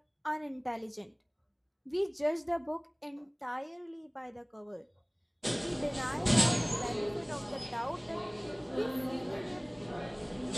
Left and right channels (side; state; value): both; identical; correlation 1.00